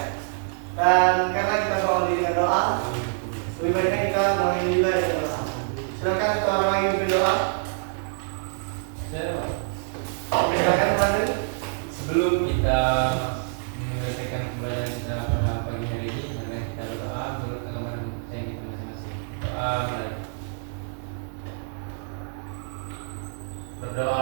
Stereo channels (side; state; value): left; silent; digital silence